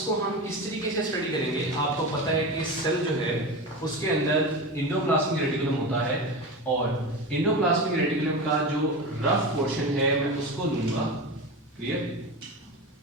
हम किस तरीके से स्टडी करेंगे। आपको पता है कि सेल जो है उसके अंदर एंडोप्लाज्मिक रेटिकुलम होता है और एंडोप्लाज्मिक रेटिकुलम का जो रफ पोर्शन है मैं उसको लूंगा, क्लियर।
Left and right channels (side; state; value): both; normal; correlation 0.25